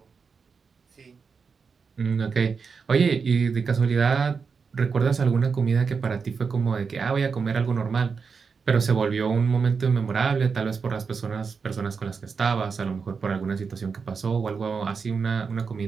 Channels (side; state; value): left; quieter; 5.4 dB